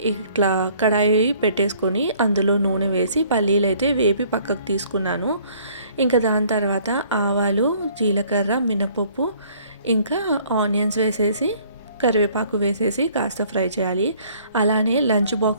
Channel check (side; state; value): both; inverted; correlation -0.58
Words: ఇట్లా కడాయి పెట్టేసుకొని అందులో నూనె వేసి పల్లీలు అయితే వేపి పక్కకు తీసుకున్నాను. ఇంకా దాని తర్వాత ఆవాలు, జీలకర్ర, మినపప్పు, ఇంకా ఆనియన్స్ వేసేసి కరివేపాకు వేసేసి కాస్త ఫ్రై చేయాలి. అలానే లంచ్